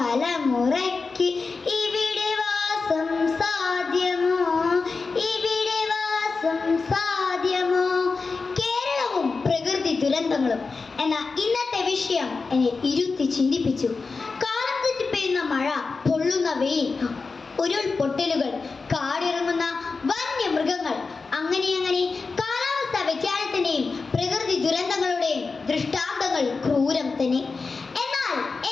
ഇവിടെ വാസം സാധ്യമോ, ഇവിടെ വാസം സാധ്യമോ. കേരളവും പ്രകൃതി ദുരന്തങ്ങളും എന്ന ഇന്നത്തെ വിഷയം എന്നെ ഇരുത്തി ചിന്തിപ്പിച്ചു. കാലം തെറ്റി പെയ്യുന്ന മഴ, പൊള്ളുന്ന വെയിൽ, ഉരുൾപൊട്ടലുകൾ, കാടിറങ്ങുന്ന വന്യമൃഗങ്ങൾ, അങ്ങനെ കാലാവസ്ഥാ വ്യതിയാനത്തിന്റെയും പ്രകൃതി ദുരന്തങ്ങളുടെയും ദൃഷ്ടാന്തങ്ങൾ ക്രൂരം തന്നെ. എന്നാൽ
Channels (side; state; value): right; quieter; 4.3 dB